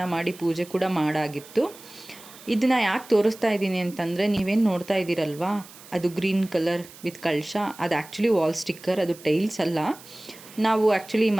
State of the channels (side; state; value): right; noise; hiss, 20 dB below the sound